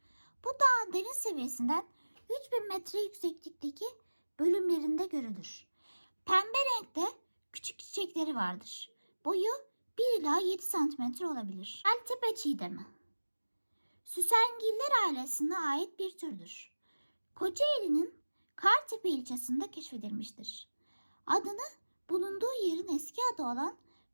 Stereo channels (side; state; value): both; inverted; correlation -1.00